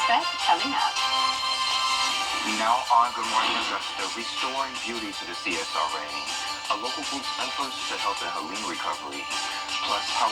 coming up. Now on Good Morning Augusta, restoring beauty to the CSRA. A local group's efforts to help in Helene recovery. Plus, how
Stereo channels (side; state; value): both; identical; correlation 1.00